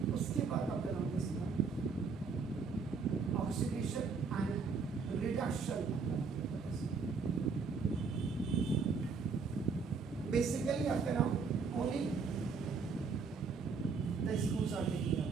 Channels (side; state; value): left; quieter; 5.1 dB